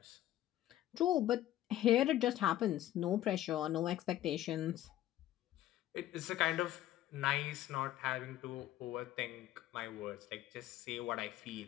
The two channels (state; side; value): quieter; right; 13.5 dB